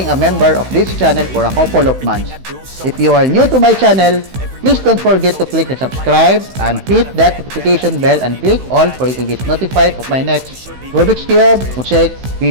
a member of this channel for a couple of months. If you are new to my channel, please don't forget to click the subscribe and hit that notification bell and click all for you to get notified of my next Rubik's Cube mosaic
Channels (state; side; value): late; left; 16 ms